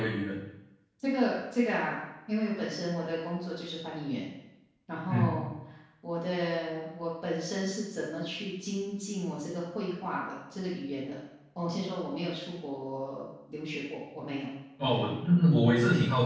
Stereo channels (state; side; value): identical; both; correlation 1.00